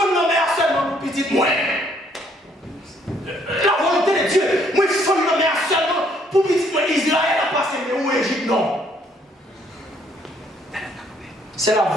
nommer seulement pour petit moins. La volonté de Dieu, moi il faut nommer seulement pour petit moins. Israël a passé, mais où Égypte non. C'est la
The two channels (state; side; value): normal; both; correlation 0.66